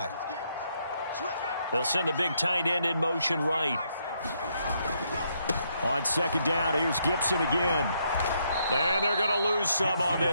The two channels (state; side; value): inverted; both; correlation -0.75